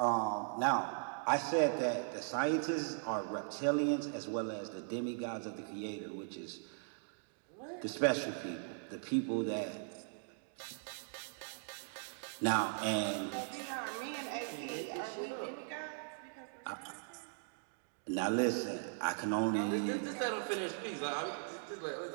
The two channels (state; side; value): silent; left; digital silence